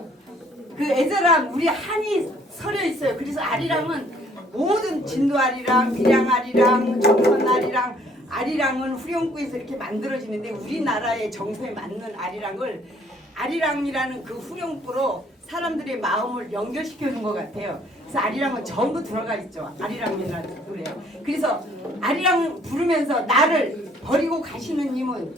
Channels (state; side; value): normal; both; correlation 0.61